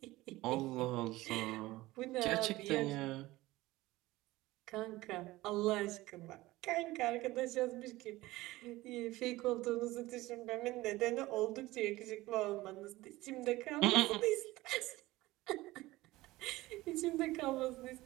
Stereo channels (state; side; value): quieter; left; 18.6 dB